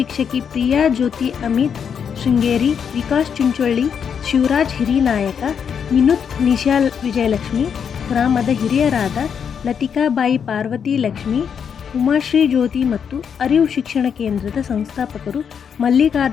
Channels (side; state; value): right; quieter; 7.3 dB